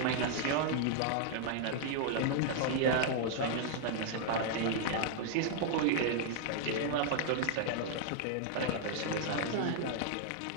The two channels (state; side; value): different; both; correlation -0.01